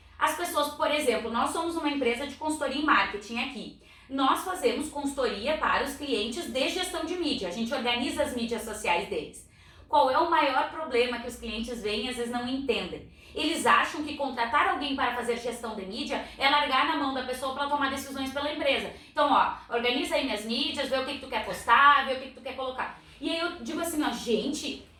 As pessoas, por exemplo, nós somos uma empresa de consultoria em marketing aqui. Nós fazemos consultoria para os clientes de gestão de mídia. A gente organiza as mídias sociais deles. Qual é o maior problema que os clientes veem e às vezes não entendem? Eles acham que contratar alguém para fazer gestão de mídia é largar na mão da pessoa para tomar decisões pela empresa. Então, organiza aí minhas mídias, vê o que tu quer postar, vê o que tu quer colocar. E aí eu digo assim, gente,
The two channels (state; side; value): identical; both; correlation 1.00